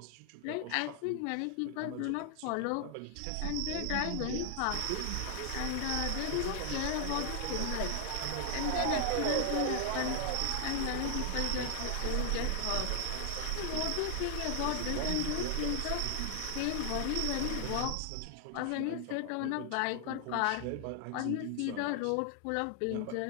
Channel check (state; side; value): different; both; correlation 0.00